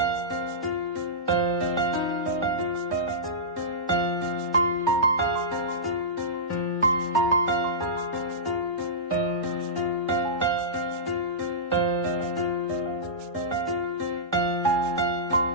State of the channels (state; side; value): normal; both; correlation -0.17